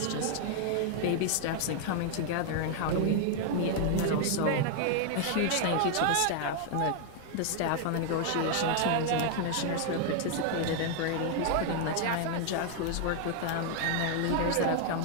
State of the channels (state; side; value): different; both; correlation 0.00